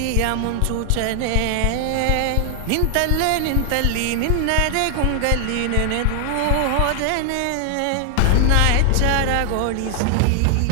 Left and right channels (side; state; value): both; different; correlation 0.00